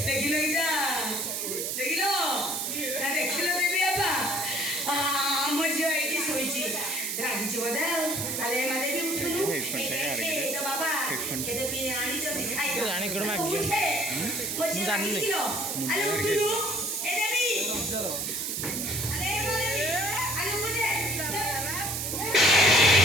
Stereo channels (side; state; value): right; noise; hiss, 2 dB below the sound